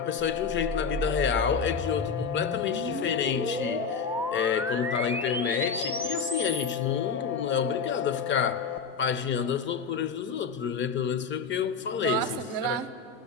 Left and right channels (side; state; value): right; quieter; 5.4 dB